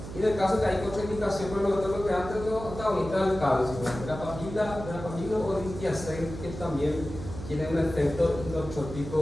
Y en el caso que hay contraindicación por los beta-bloqueantes, los antagonistas del calcio, verapamila o distiacén, que también tienen un efecto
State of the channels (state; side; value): noise; right; hum, 10 dB below the sound